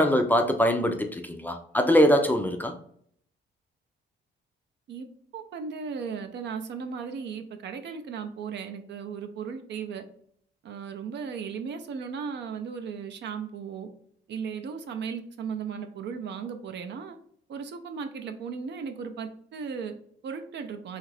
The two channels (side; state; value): both; normal; correlation 0.65